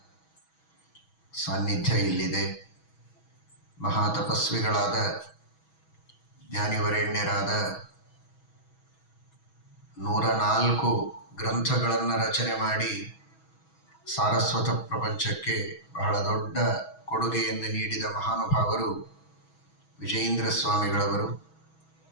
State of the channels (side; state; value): right; late; 6.2 ms